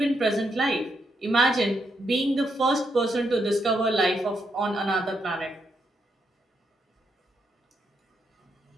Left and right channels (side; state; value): both; normal; correlation 0.80